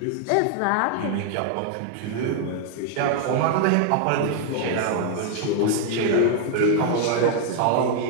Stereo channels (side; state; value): both; different; correlation 0.00